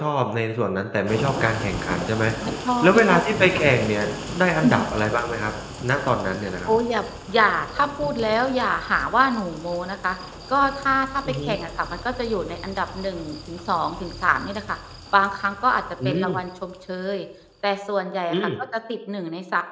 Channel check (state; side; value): identical; both; correlation 1.00